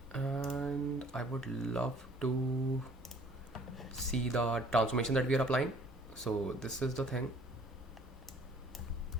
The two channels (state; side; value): normal; both; correlation 0.55